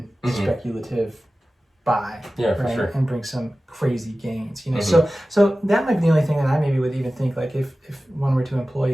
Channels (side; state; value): both; normal; correlation 0.96